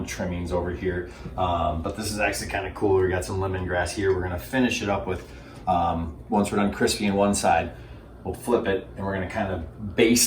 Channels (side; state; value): both; identical; correlation 1.00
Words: trimmings over here, but this is actually kind of cool. We got some lemongrass here. We're gonna finish it up with, once we're done crispy on one side, we'll flip it and we're gonna kind of